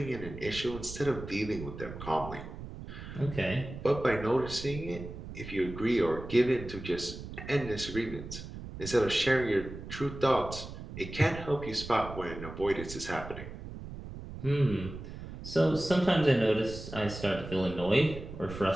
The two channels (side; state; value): right; noise; rumble, 11 dB below the sound